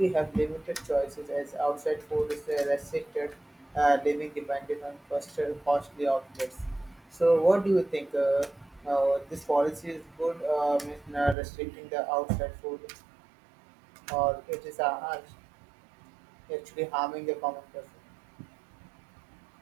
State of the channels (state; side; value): drops out; left; at 11.4 s